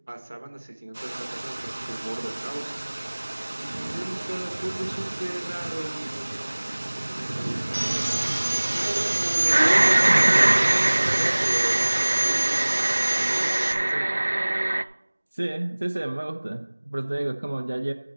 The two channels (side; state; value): both; inverted; correlation -1.00